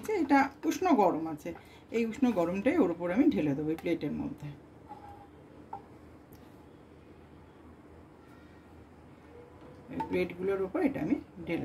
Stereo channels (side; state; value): both; identical; correlation 1.00